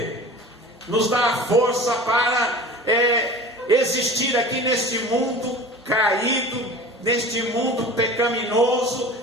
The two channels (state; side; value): normal; both; correlation 0.38